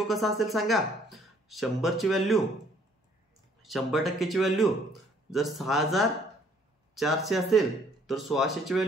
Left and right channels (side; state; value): both; normal; correlation 0.62